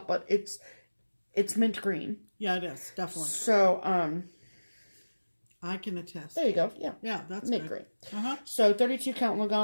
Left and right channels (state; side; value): inverted; both; correlation -1.00